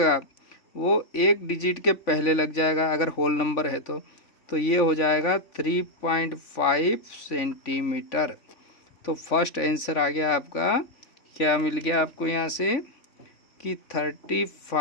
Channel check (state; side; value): late; right; 3.5 ms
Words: वो एक डिजिट के पहले लग जाएगा अगर होल नंबर है तो ये हो जाएगा 3.5 सेंटीमीटर। तो फर्स्ट आंसर आ गया आपका, क्या मिल गया आपको यहाँ से कि